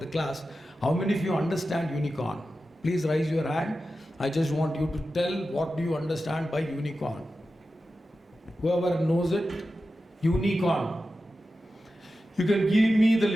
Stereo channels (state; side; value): normal; both; correlation 0.92